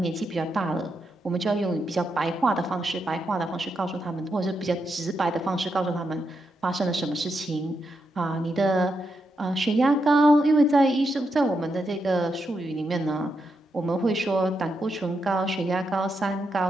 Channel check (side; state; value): both; normal; correlation 0.83